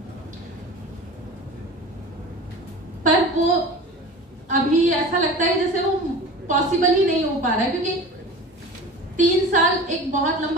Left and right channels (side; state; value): both; normal; correlation 0.36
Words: पर वो अभी ऐसा लगता है जैसे वो पॉसिबल ही नहीं हो पा रहा है, क्योंकि 3 साल एक बहुत